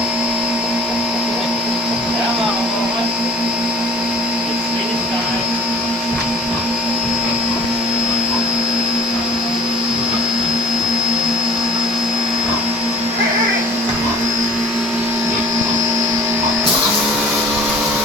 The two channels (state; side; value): normal; both; correlation 0.48